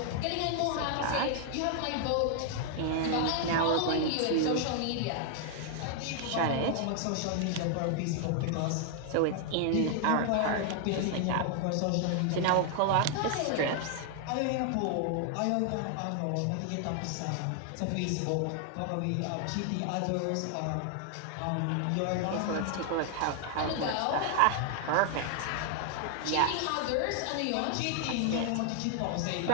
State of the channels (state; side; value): different; both; correlation 0.00